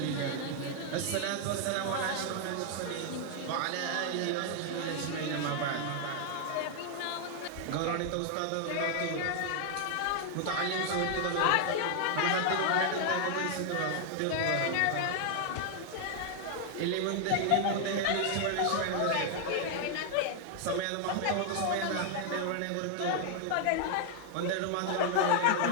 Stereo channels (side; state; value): both; different; correlation 0.00